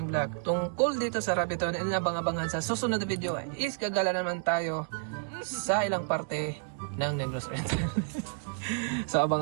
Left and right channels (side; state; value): left; silent; digital silence